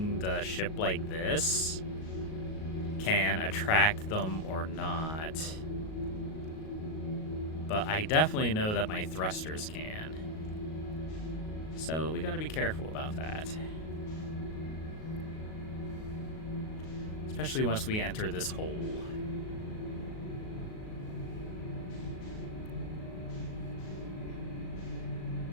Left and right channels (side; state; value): right; late; 38 ms